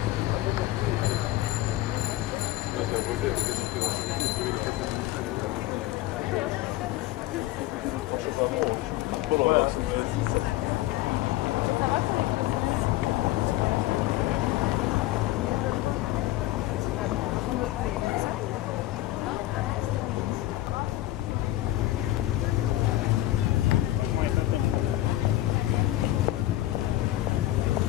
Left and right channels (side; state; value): right; quieter; 15.7 dB